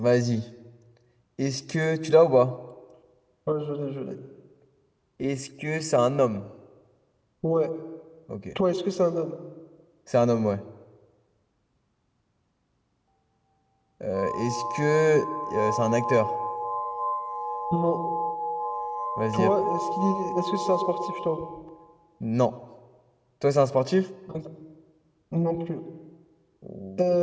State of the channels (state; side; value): identical; both; correlation 1.00